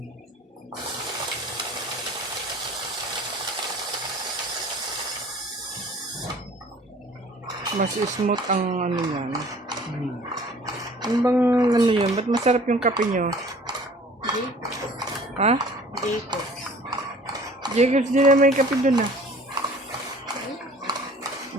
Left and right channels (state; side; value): normal; both; correlation 0.50